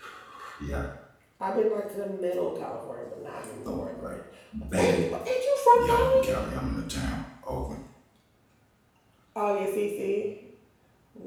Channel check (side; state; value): both; identical; correlation 1.00